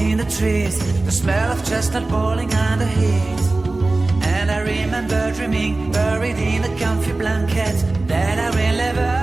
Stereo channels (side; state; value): left; quieter; 3.1 dB